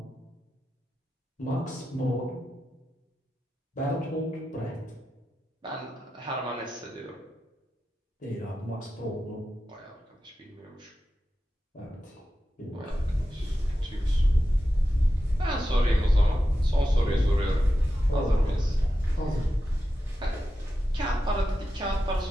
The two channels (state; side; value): normal; both; correlation 0.91